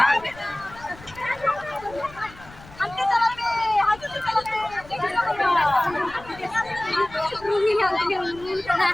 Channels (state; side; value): noise; left; rumble, 20 dB below the sound